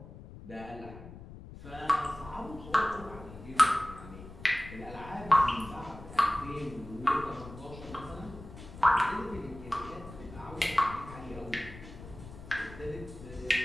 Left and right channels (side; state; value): left; noise; rumble, 15 dB below the sound